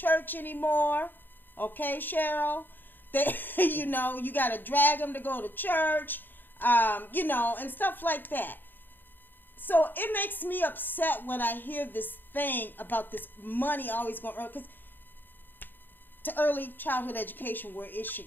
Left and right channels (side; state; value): right; late; 0.092 ms